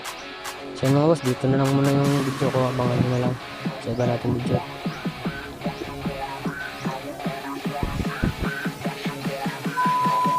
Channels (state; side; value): identical; both; correlation 1.00